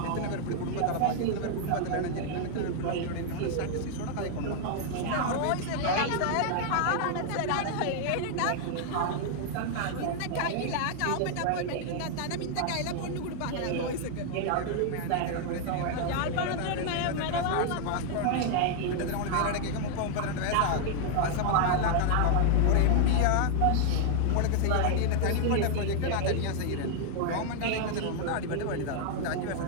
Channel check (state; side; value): different; both; correlation 0.00